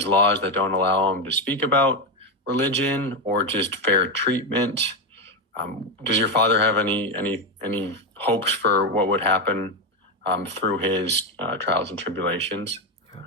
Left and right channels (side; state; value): both; normal; correlation 0.09